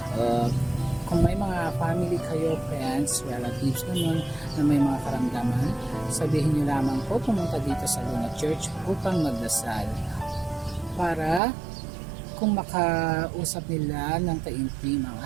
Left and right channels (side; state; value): left; drops out; at 11.4 s